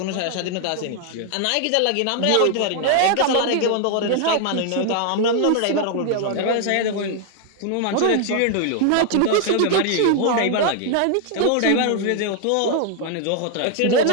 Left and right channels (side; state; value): both; different; correlation 0.00